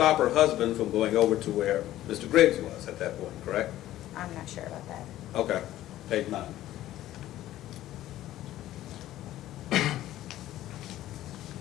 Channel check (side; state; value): right; quieter; 14.1 dB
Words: her husband from going over to where Mr. Briggs was at that point, correct? I'm not sure about that. Okay. Page 9.